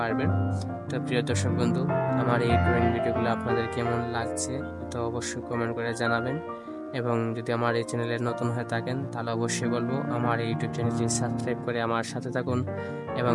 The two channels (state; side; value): identical; both; correlation 1.00